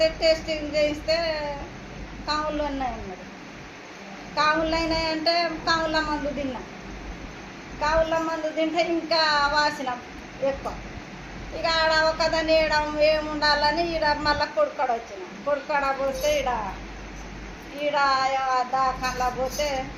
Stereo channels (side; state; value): both; identical; correlation 1.00